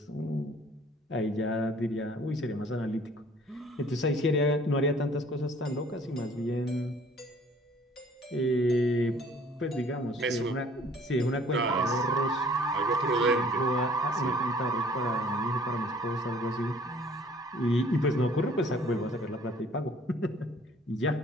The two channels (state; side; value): normal; both; correlation 0.55